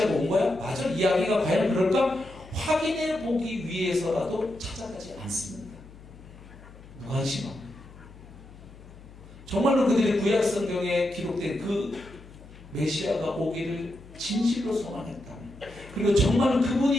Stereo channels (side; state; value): left; noise; hum, 19 dB below the sound